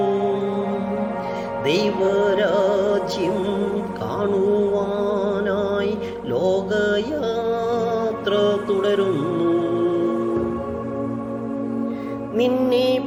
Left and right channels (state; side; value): identical; both; correlation 1.00